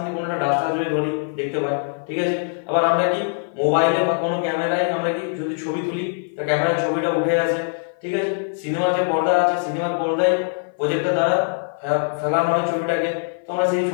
কোনো একটা ডাস্টার যদি ধরি দেখতে পাই, ঠিক আছে। আবার আমরা কি মোবাইলে বা কোনো ক্যামেরায় আমরা কি যদি ছবি তুলি, তা ক্যামেরার ছবিটা উঠে আসে, ঠিক আছে। সিনেমার যে পর্দা আছে, সিনেমার পর্দায় প্রজেক্টর দ্বারা ফেলানো হয় ছবিটাকে, তো আমরা সেই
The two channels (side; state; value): right; silent; 57 dB below the other